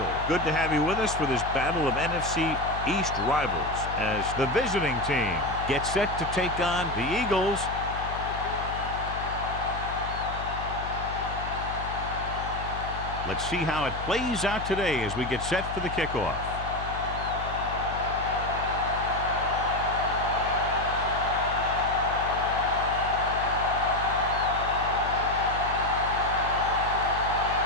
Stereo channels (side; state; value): left; noise; hum, 8 dB below the sound